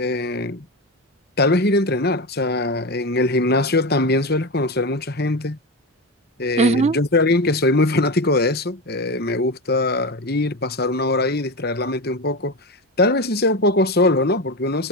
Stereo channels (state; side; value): normal; both; correlation 0.19